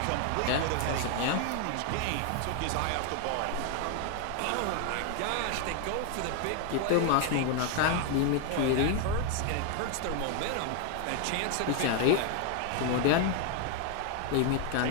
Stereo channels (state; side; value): different; both; correlation 0.00